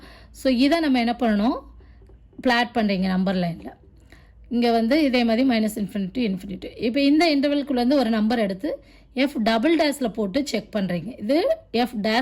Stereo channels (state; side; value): identical; both; correlation 1.00